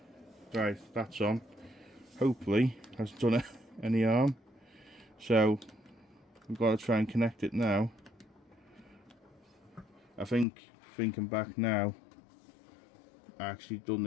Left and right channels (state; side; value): drops out; right; at 10.5 s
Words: Right, that's on. Hopefully, that's done it. Any arm, so we've got to try and connect it now. I think, thinking back now, I actually done